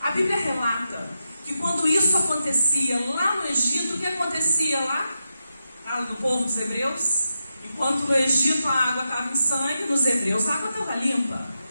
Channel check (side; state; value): both; inverted; correlation -0.87